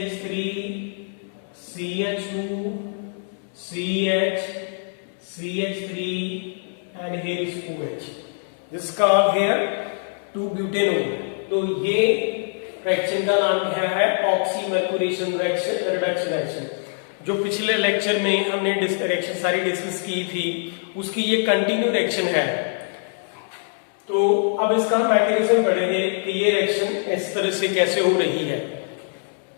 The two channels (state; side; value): silent; right; 59 dB below the other